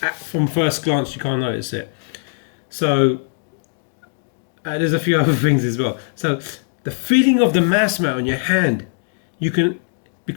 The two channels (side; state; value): right; silent; digital silence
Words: from first glance you can't notice it. So there's a few other things as well. So the feeling of the mouse mat on your hand, you can,